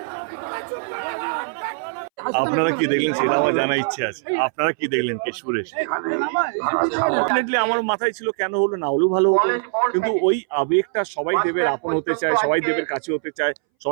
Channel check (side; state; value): left; silent; 63 dB below the other